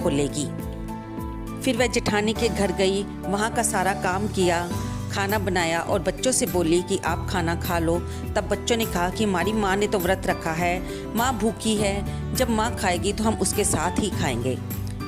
फिर वह जेठानी के घर गई, वहाँ का सारा काम किया, खाना बनाया और बच्चों से बोली कि आप खाना खा लो। तब बच्चों ने कहा कि हमारी माँ ने तो व्रत रखा है, माँ भूखी है, जब माँ खाएगी तो हम उसके साथ ही खाएंगे।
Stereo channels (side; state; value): both; identical; correlation 1.00